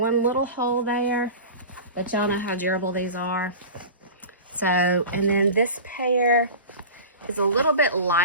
little hole there, but y'all know how durable these are. So, and then this pair is a little bit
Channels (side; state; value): both; inverted; correlation -0.33